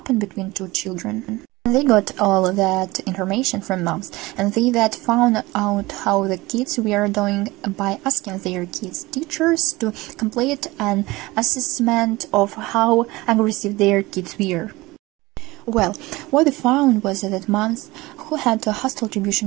between two children. They got all that information from moms, and they that found out how the kids were doing by asking their kids' teachers to complete an assessment of how aggressive their kids were. Well, what they found was that moms who had hostile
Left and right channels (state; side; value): quieter; left; 20.8 dB